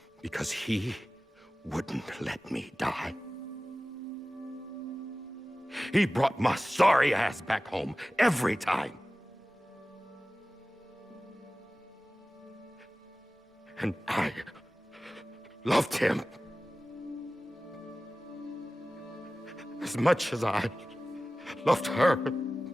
Because he wouldn't let me die. He brought my sorry ass back home every time. And I loved him as much as I loved her.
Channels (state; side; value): normal; both; correlation 0.97